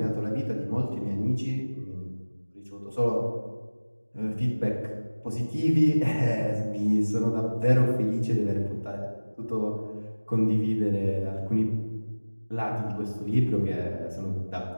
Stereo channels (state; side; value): inverted; both; correlation -1.00